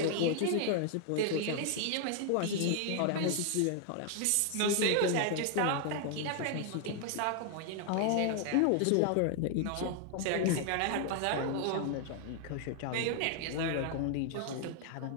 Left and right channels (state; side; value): different; both; correlation 0.00